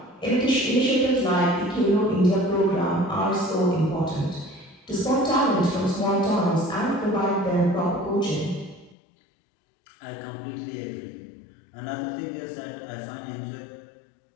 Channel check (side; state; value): right; drops out; at 9.0 s